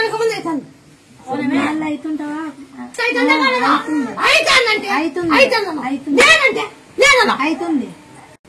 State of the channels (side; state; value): both; identical; correlation 1.00